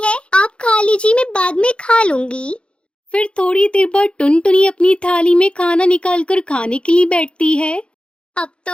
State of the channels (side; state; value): right; late; 0.057 ms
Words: है, आप खा लीजिए, मैं बाद में खा लूंगी। फिर थोड़ी देर बाद टुनटुनी अपनी थाली में खाना निकालकर खाने के लिए बैठती है। अब